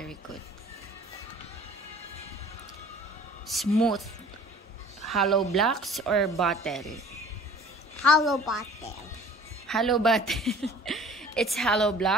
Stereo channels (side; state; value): both; normal; correlation 0.48